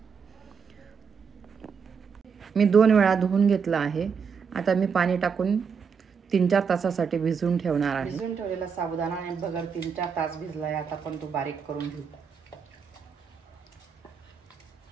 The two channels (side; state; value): left; quieter; 6.2 dB